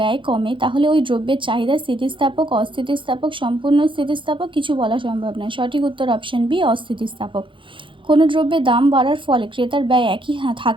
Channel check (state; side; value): late; left; 0.24 ms